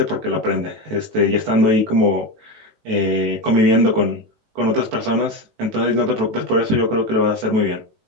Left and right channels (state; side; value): late; left; 18 ms